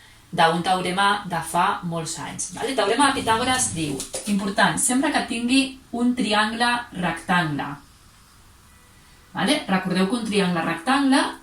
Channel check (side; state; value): both; identical; correlation 1.00